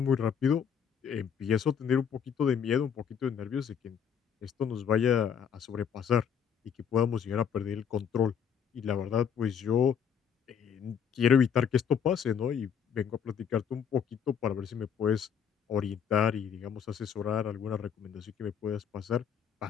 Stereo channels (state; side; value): quieter; right; 7.6 dB